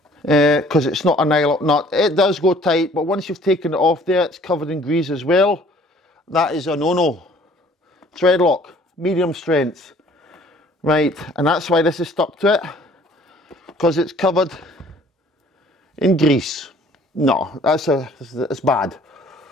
because it's not a nylock nut. It does go tight, but once you've taken it off there, it's covered in grease as well. That is a no-no. Thread lock, medium strength. Right, and that's why this is stuck to it, because it's covered in grease. No, that's bad.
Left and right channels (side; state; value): both; normal; correlation 0.55